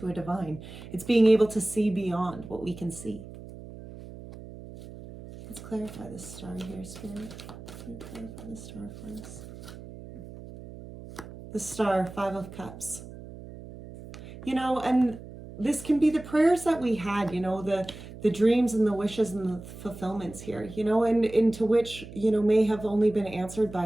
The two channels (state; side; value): noise; right; hum, 14 dB below the sound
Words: a divine. It's being able to see beyond what we can see. Let's clarify this star here, Spirit. Can you clarify the star for us? The Star, 5 of Cups. And this can be the prayers that we had, the dreams and the wishes and the fulfillments here, and into which, may have only been answered